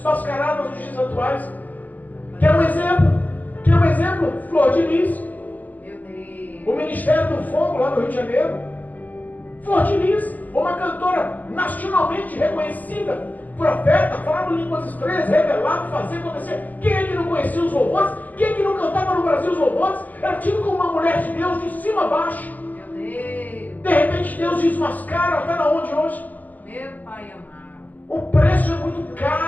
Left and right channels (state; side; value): late; right; 0.081 ms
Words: nos dias atuais? Quer um exemplo? Flor de Lis. Meu Deus. O Ministério do Fogo lá no Rio de Janeiro. Flor de Lis, uma cantora nacionalmente reconhecida, profeta, falava línguas estranhas, revelado, fazia acontecer. Quem é que não conhecia os louvores? Quem é que não cantava no Brasil os louvores? Era tido como uma mulher de Deus de cima a baixo. Meu Deus. De repente Deus desmascara, está na onde hoje? Meu Pai amado. O preço é muito